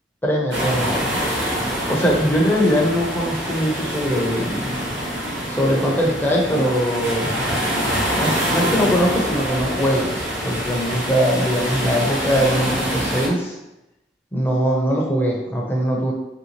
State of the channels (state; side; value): normal; both; correlation 0.58